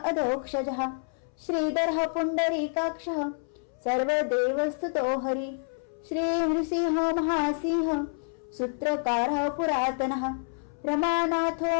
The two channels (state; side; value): silent; right; 59 dB below the other